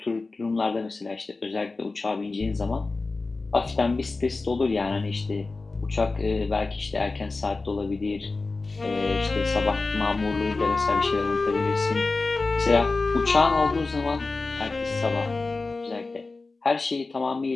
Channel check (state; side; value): quieter; right; 3.6 dB